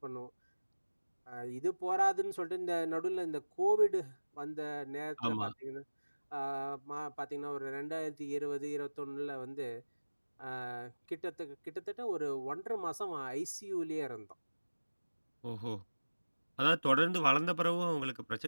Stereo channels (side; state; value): both; inverted; correlation -1.00